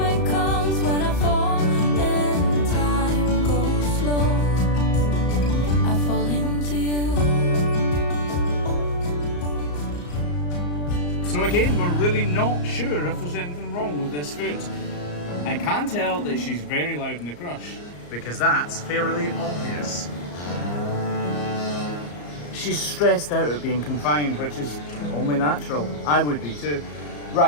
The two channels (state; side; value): late; right; 34 ms